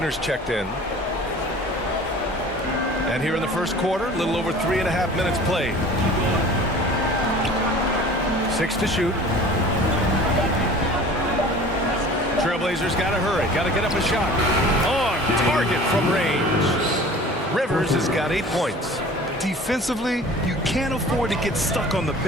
checked in. And here in the first quarter, a little over 3.5 minutes played. 6 to shoot. Trailblazers got to hurry. Got to get up a shot. On target from range. Rivers has got 8 points. Defensively, you can't afford to get stuck on the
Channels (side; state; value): both; normal; correlation 0.44